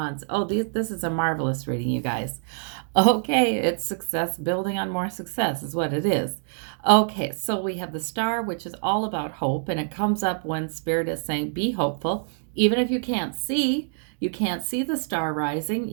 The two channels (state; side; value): silent; left; digital silence